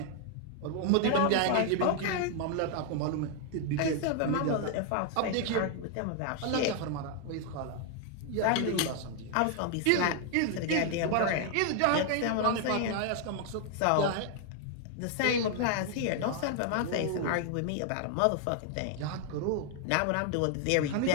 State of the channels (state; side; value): different; both; correlation 0.00